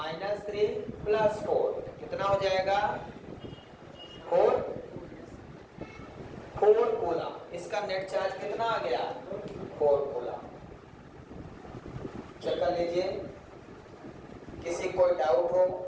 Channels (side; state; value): both; identical; correlation 1.00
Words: +4 कितना हो जाएगा? 4 कूलम। इसका नेट चार्ज कितना आ गया? 4 कूलम। चेक कर लीजिए, किसी कोई डाउट हो